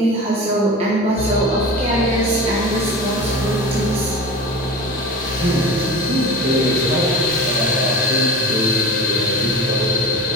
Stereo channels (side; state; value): both; normal; correlation 0.33